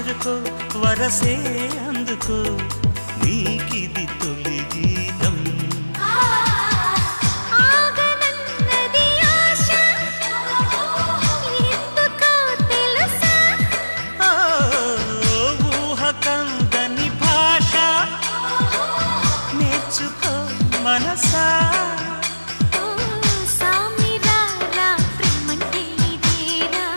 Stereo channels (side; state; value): both; inverted; correlation -1.00